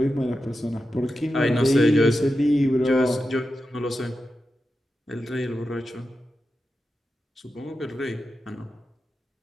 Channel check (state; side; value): normal; both; correlation 0.90